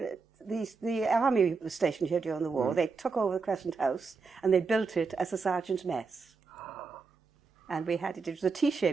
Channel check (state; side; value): quieter; left; 4.7 dB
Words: army was stationed here during the war. They took over the Crescent House and they built it as a sergeant's mess. And we had it was a